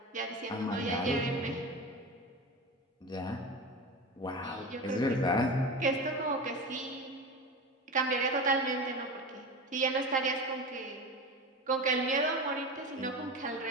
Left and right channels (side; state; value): both; normal; correlation 0.27